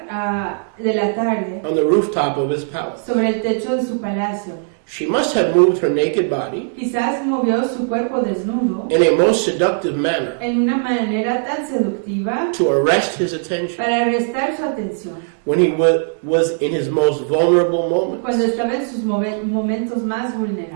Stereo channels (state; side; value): silent; left; 67 dB below the other